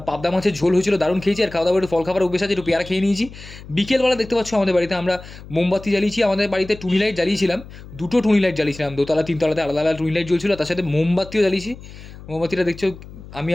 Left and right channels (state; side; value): noise; left; hum, 16 dB below the sound